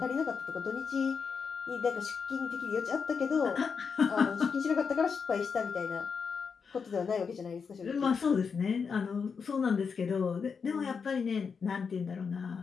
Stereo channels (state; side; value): quieter; right; 5.8 dB